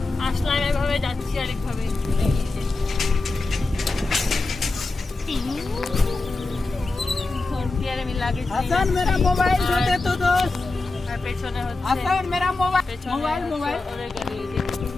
আসলাম এভাবে, যাচ্ছি আরেকভাবে। আমি লাগেজ হাসান মেরা মোবাইল দে দে তো দোস্ত। আর পেছনে হচ্ছে হাসান মেরা মোবাইল পেছনে মোবাইল ওদের গাড়ি।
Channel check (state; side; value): quieter; right; 3.4 dB